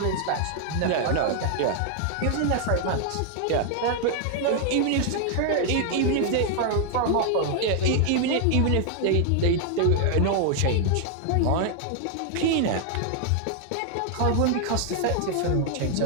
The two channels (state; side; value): different; both; correlation 0.00